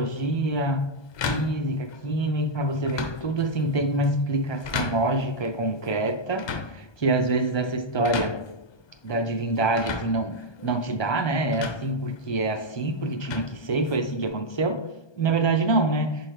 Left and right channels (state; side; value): late; right; 1.2 ms